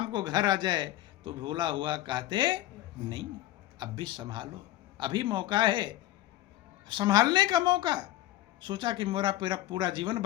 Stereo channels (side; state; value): right; quieter; 15.1 dB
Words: को घर आ जाए तो भूला हुआ कहते नहीं, अब भी संभालो, अभी मौका है, संभालने का मौका। सोचा कि मेरा पूरा जीवन